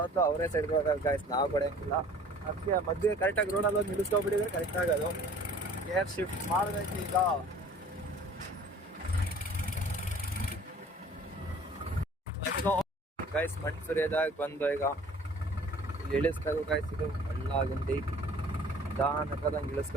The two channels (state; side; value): normal; both; correlation 0.49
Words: ಅವರೇ ಸೈಡ್ ಕೊಡ್ತಾರೆ ಗೈಸ್, ನಾವು ಕೊಡೋಂಗಿಲ್ಲ. ಅದಕ್ಕೆ ಮಧ್ಯೆ ಕರೆಕ್ಟಾಗಿ ರೋಡಲ್ಲಿ ಒಂದು ನಿಲ್ಲಿಸ್ಕೊಬಿಟ್ಟಿದ್ರೆ ಕರೆಕ್ಟ್ ಆಗೋದು. ಏರ್ ಶಿಫ್ಟ್ ಮಾಡಬೇಕು ಈಗ. ಗೈಸ್ ಮಣ್ಣು ಸುರಿಯೋದಾಗ ಬಂದು ಈಗ ಇಲ್ಲಿ ಇಳಿಸ್ಬೇಕು ಗೈಸ್. ಇದು ಹಳ್ಳ ಗುಂಡಿ ನಿಧಾನಕ್ಕದಂಗೆ